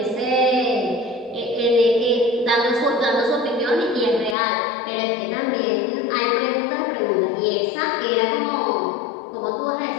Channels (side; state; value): right; drops out; at 4.4 s